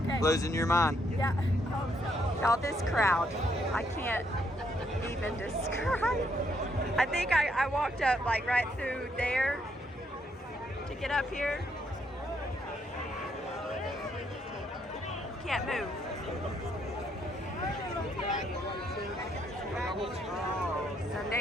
Losing your mind. Yeah, I hope so. Y'all, this crowd, I can't even describe. I think I walked up like right through there to get up here. Can't move.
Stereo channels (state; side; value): normal; both; correlation 0.73